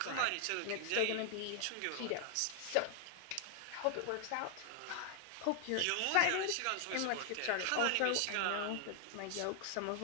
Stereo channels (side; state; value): both; different; correlation 0.00